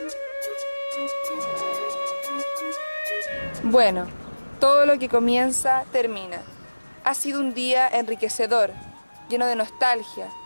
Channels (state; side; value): inverted; both; correlation -1.00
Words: Bueno, todo lo que comienza, termina. Ha sido un día enriquecedor, lleno de nostalgia,